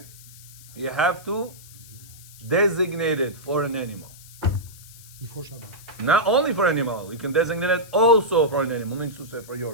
you have to designate it for an animal. Before Shabbat. Not only for animal, you can designate it also for an animal, means to say for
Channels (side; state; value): left; noise; hiss, 20 dB below the sound